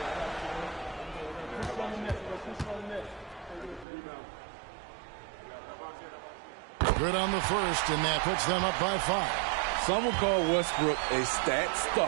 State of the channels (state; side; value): drops out; left; at 3.9 s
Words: Good on the first, and that puts them up by 5. Some would call Westbrook a stat